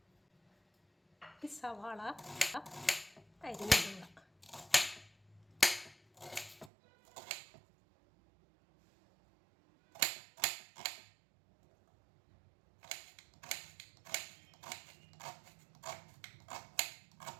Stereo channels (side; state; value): left; drops out; at 6.7 s